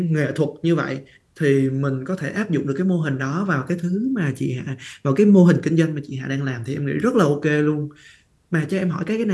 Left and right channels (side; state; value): both; identical; correlation 1.00